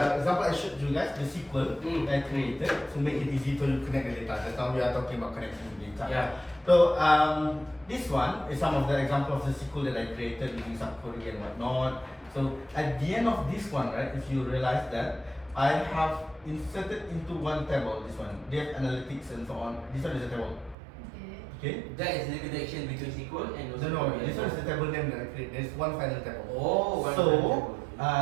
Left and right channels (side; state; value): left; drops out; at 20.8 s